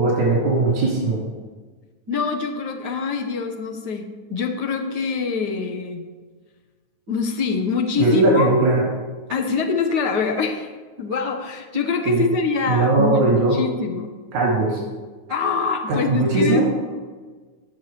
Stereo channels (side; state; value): left; late; 9.4 ms